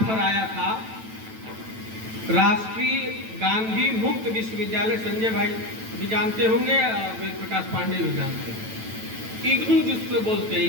आया था राष्ट्रीय गांधी मुक्त विश्वविद्यालय, संजय भाई भी जानते होंगे, वेद प्रकाश पांडे भी जानते हैं, इग्नू जिसको बोलते हैं,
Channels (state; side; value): late; left; 9.1 ms